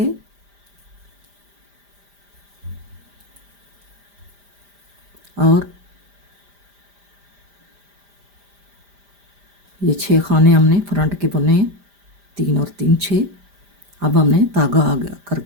और ये 6 खाने हमने फ्रंट के बुने, 3 और 3 6। अब हमने धागा आगे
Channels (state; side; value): late; left; 5.0 ms